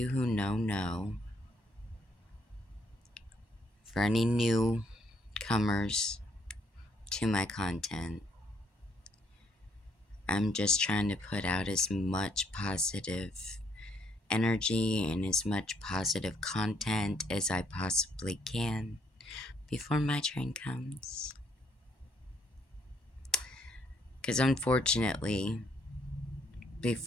who know. For any newcomers to my content, I'm just trying to put out as much positive energy and as much positive content as I possibly can before my train comes. Because unfortunately,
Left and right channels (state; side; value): late; right; 1.1 ms